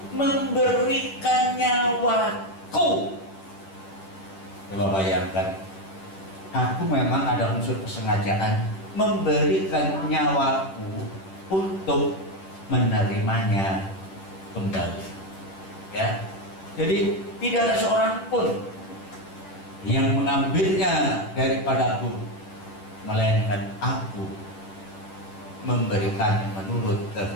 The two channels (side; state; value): right; late; 10 ms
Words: memberikan nyawaku." Coba bayangkan, aku memang ada unsur kesengajaan memberikan nyawaku untuk menerimanya kembali. Ya, jadi tidak ada seorang pun yang mengambilnya daripadaku, melainkan aku memberikan menurut